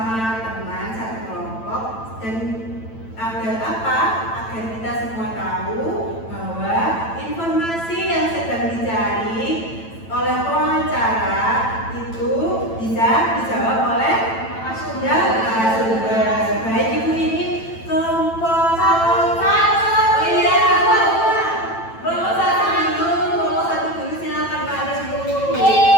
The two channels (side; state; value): right; late; 9.0 ms